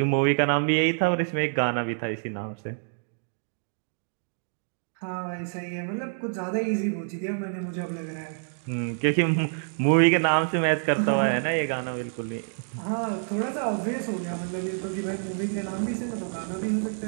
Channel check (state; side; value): silent; left; digital silence